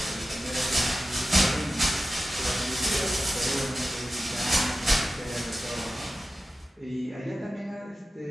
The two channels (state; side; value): normal; both; correlation 0.94